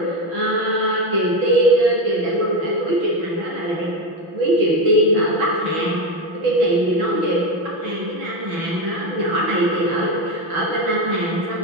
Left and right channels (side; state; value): left; late; 6.0 ms